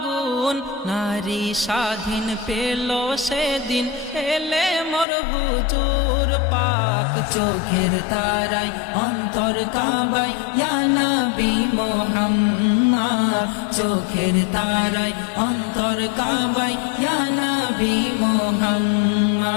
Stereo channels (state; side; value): drops out; right; at 5.1 s